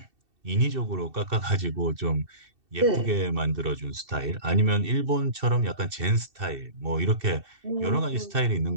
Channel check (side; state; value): left; late; 2.7 ms